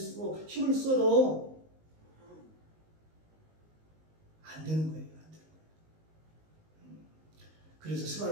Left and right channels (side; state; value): left; late; 19 ms